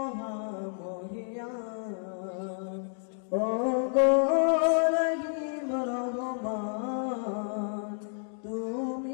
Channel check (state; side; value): silent; right; digital silence